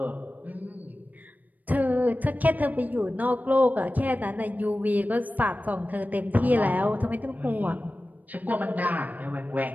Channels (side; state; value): left; late; 0.080 ms